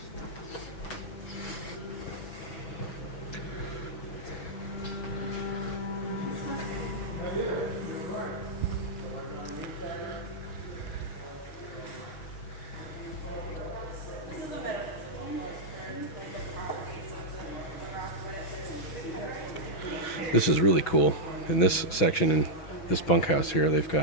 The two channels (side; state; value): right; late; 6.1 ms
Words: This is really cool. In this section, in this bunkhouse here, they've